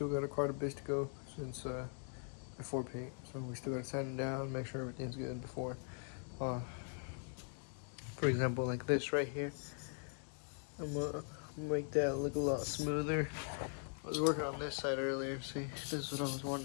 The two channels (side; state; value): right; silent; 50 dB below the other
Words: got quite a bit to go since before paint, so we still got to sand it down, make sure everything's good before. For example, like this right here, I'm gonna make that look a lot smoother. I was working on this side earlier. See, this is what I was